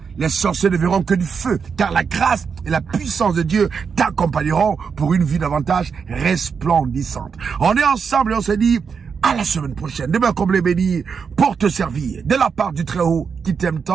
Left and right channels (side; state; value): left; quieter; 6.1 dB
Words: les sorciers ne verront que du feu. Car la grâce et la puissance de Dieu t'accompagneront pour une vie davantage resplendissante. On est ensemble et on se dit à la semaine prochaine. Demain comme les bénis pour te servir. De la part du Très-Haut qui t'aime